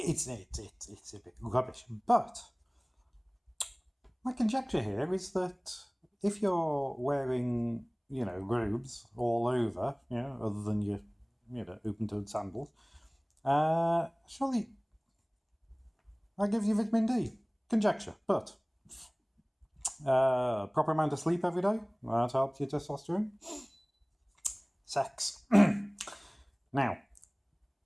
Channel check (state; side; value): identical; both; correlation 1.00